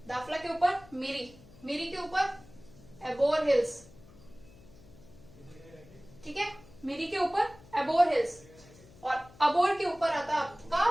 दाफला के ऊपर मिरी के ऊपर एबोर हिल्स, ठीक है, मिरी के ऊपर एबोर हिल्स, और अबोर के ऊपर आता है आपका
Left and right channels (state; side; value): noise; left; hum, 23 dB below the sound